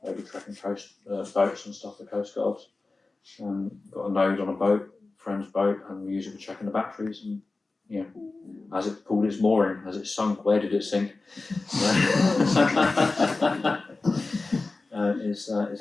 maybe tracking coast boats and stuff for coast guards. Got a node on a boat, friend's boat, and we use it for checking the batteries. And you know, has it pulled its mooring? Has it sunk? Where did it sink?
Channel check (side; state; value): right; quieter; 3.5 dB